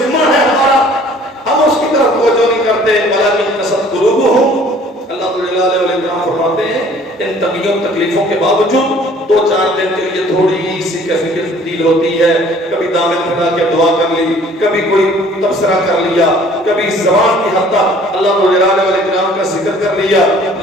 ہے ہمارا، ہم اس کی طرف توجہ نہیں کرتے. ولیکن قست قلوبہم. اللہ جلال والاکرام فرماتے ہیں ان تنگیوں تکلیفوں کے باوجود 2-4 دن کے لیے تھوڑی سی کیفیت تبدیل ہوتی ہے، کبھی دامن پھیلا کے دعا کر لی، کبھی کوئی تبصرہ کر لیا، کبھی زبان کی حد تک اللہ جلال والاکرام کا ذکر کر لیا.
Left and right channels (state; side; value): normal; both; correlation 0.54